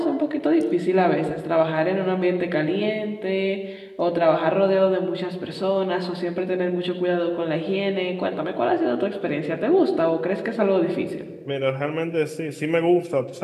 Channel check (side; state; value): both; identical; correlation 1.00